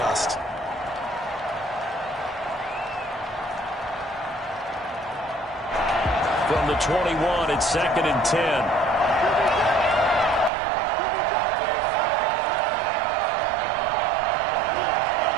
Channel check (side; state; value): left; drops out; at 10.5 s